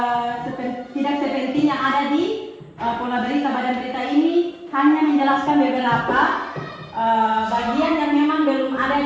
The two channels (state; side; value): identical; both; correlation 1.00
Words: tidak sepenting yang ada di pola berita. Badan berita ini hanya menjelaskan beberapa bagian yang memang belum